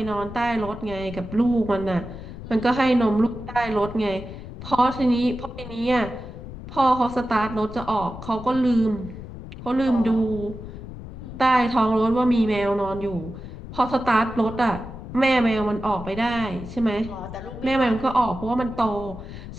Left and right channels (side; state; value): left; noise; rumble, 12 dB below the sound